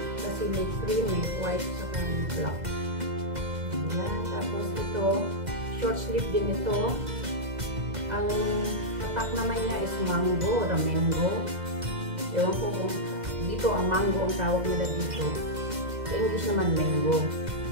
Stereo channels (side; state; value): left; late; 2.0 ms